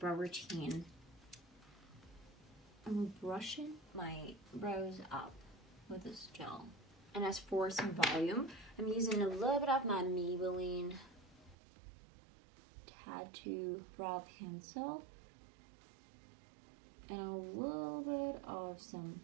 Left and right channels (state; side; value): drops out; left; at 11.6 s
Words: routine. I'm brushing my brows up with this gel. And as for some volume, I'm using a little bit of my Maybelline Tattoo Brow Pencil and a little bit of some